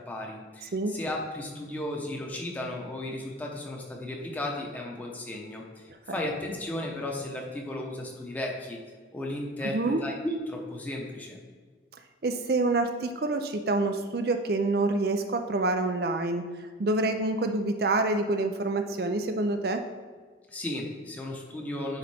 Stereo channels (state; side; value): normal; both; correlation 0.33